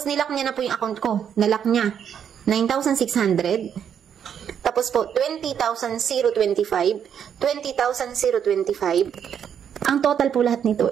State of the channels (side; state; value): left; quieter; 8.4 dB